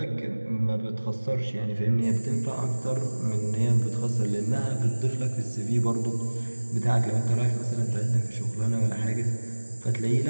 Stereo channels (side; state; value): both; inverted; correlation -1.00